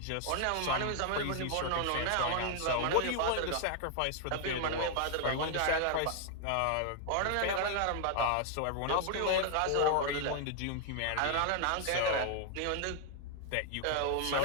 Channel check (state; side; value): different; both; correlation 0.00